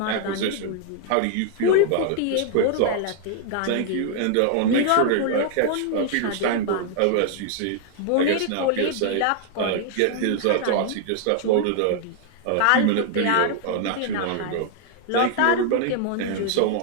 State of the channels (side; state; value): both; different; correlation 0.00